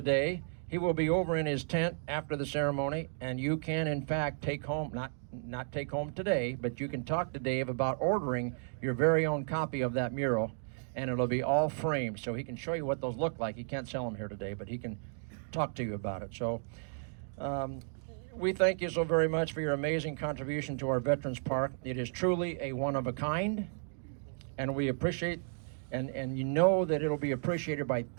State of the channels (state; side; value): silent; left; digital silence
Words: he will be over in his tent after the ceremony, and you can in fact take home, not take home today, but you can talk to Dave about ordering your very own copy of that mural, and it'll be all framed, so he can show you what those look like. He can't sell them here today, but he can talk to you about it. So we thank you so very much for your amazing contribution to our Veterans Park. It is truly a one of a kind, and we appreciate, and you know that it'll be appreciated by